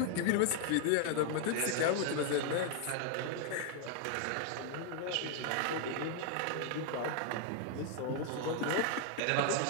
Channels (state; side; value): different; both; correlation 0.00